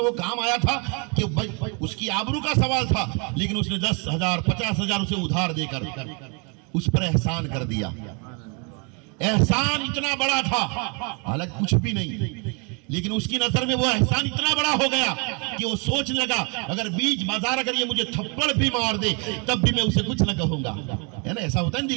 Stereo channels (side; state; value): left; quieter; 33.9 dB